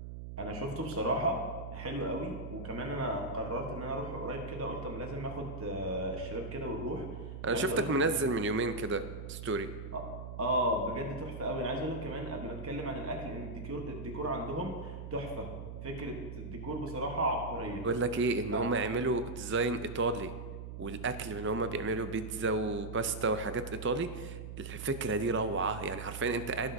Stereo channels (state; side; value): noise; right; hum, 8 dB below the sound